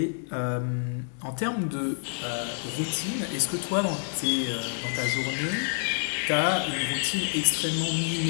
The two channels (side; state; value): right; silent; digital silence